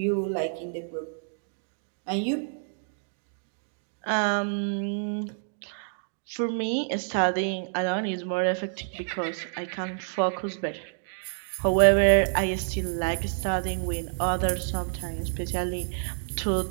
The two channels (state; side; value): silent; left; digital silence